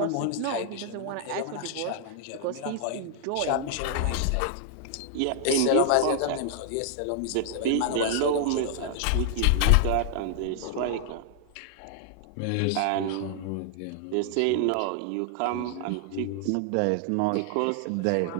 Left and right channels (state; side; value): different; both; correlation 0.00